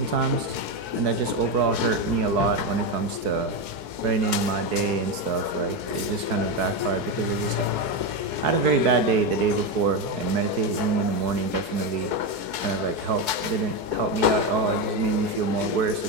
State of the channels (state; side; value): late; left; 4.7 ms